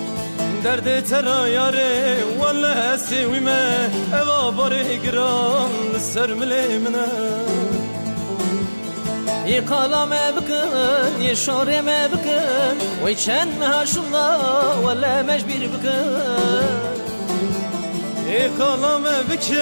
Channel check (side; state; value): both; inverted; correlation -1.00